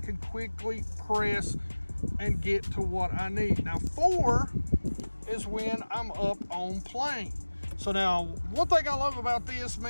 quickly press and get to what I need. Now 4 is when I'm up on plane. So now, one thing I love about this,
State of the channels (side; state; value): both; inverted; correlation -1.00